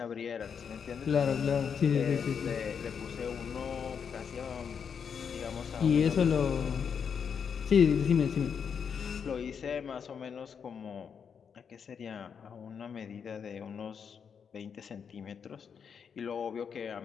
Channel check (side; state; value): right; quieter; 6.9 dB